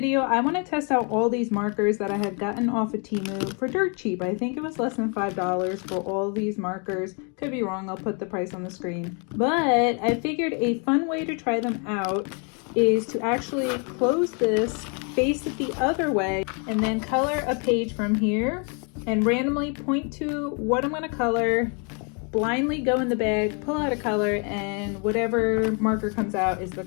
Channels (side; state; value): right; quieter; 36.9 dB